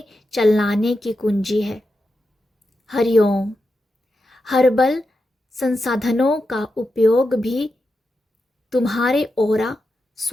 चलाने की कुंजी है। हरिओम। हर्बल संसाधनों का उपयोग भी तुम्हारे ऑरा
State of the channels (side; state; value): both; normal; correlation 0.88